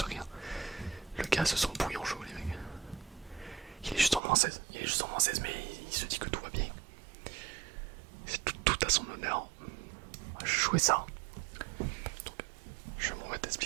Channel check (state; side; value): drops out; left; at 4.2 s